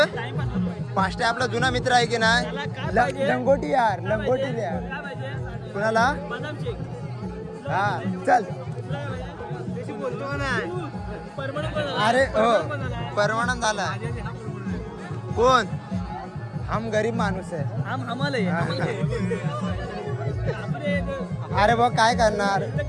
पाचशे आपला जुना मित्र आहे की नाही? लंगोटी यार लंगोटी द्या कुणाला? हा चल अरे हो परमानंद झाला. कोण? हम गरीब माणूस आहे. अरे बघ काय करणार?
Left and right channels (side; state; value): both; identical; correlation 1.00